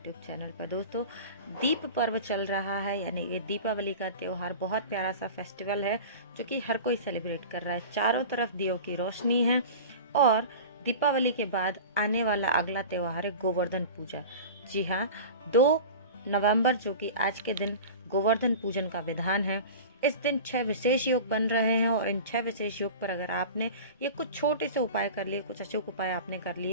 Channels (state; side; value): inverted; both; correlation -0.34